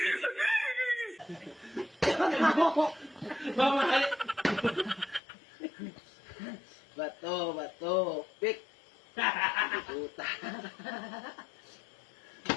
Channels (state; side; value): drops out; right; at 5.2 s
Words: Mamahal. Bato, pik. Puta.